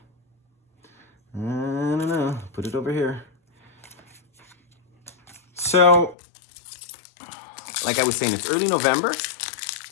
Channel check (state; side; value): drops out; right; at 6.2 s